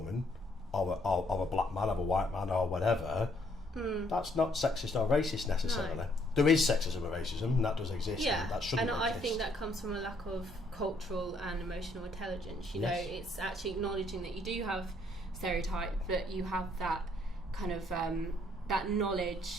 or a black man, or a white man, or whatever, that's not sexist or racist necessarily. No. There is sexism and racism, and that does exist. Yeah, and that shouldn't and exist. I think that comes from a lack of cultural and emotional intelligence. You know, it's actually acknowledging that you do have stereotype, but you have that kind of that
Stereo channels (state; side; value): normal; both; correlation 0.68